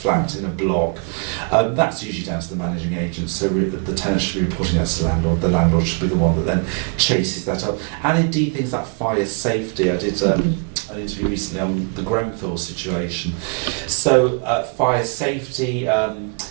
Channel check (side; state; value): left; quieter; 35.3 dB